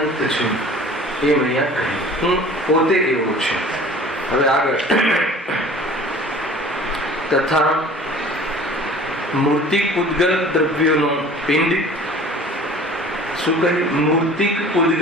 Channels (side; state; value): both; normal; correlation 0.46